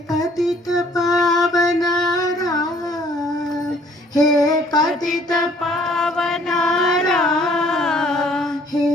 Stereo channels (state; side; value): normal; both; correlation 0.59